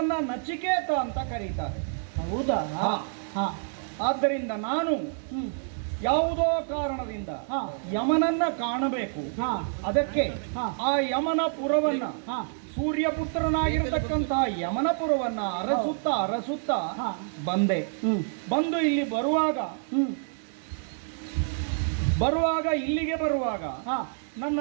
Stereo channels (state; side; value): silent; left; digital silence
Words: ನಚಿಕೇತ ಅಂತ ಕರೀತಾರೆ. ಹೌದಾ? ಆದ್ದರಿಂದ ನಾನು ಯಾವುದೋ ಕಾರಣದಿಂದ ಯಮನನ್ನ ಕಾಣಬೇಕು. ಅದಕ್ಕೆ ಆ ಯಮನ ಪುರವನ್ನ, ಸೂರ್ಯಪುತ್ರನಾಗಿರತಕ್ಕಂತಹ ಯಮನಪುರವನ್ನ ಅರಸುತ್ತಾ ಬಂದೆ. ಬಂದು ಇಲ್ಲಿ ಬರುವಾಗ ಇಲ್ಲಿಗೆ ಬರುವಾಗ